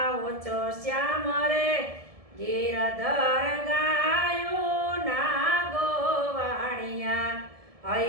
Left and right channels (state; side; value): late; left; 1.7 ms